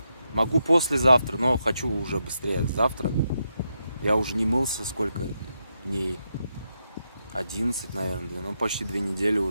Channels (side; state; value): both; inverted; correlation -0.84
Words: Могу послезавтра, но хочу уже быстрее завтра. Я уже не мылся сколько дней? 11, наверное, ну, почти 2 недели